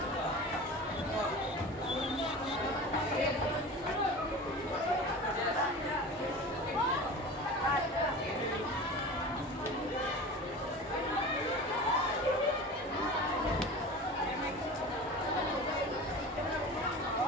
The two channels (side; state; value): both; normal; correlation 0.34